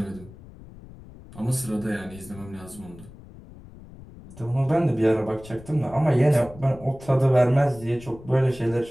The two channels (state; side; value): noise; left; rumble, 19 dB below the sound